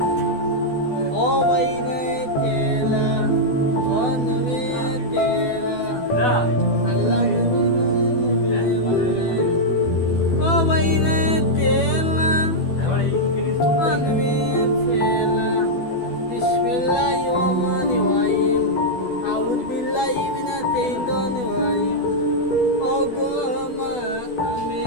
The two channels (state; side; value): late; right; 12 ms